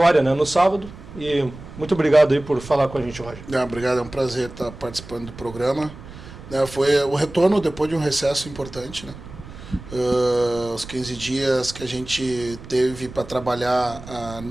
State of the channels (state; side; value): noise; right; rumble, 15 dB below the sound